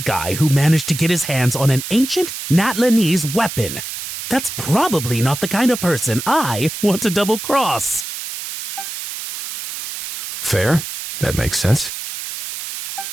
who managed to get his hands on an ancient Natlanese weapon. That's probably not the kind of person I want to double-cross. Fair. That makes sense.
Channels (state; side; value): noise; right; hiss, 8 dB below the sound